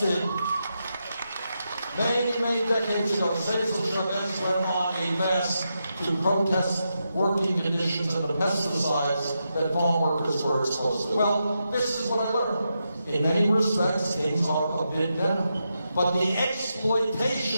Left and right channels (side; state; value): both; inverted; correlation -0.85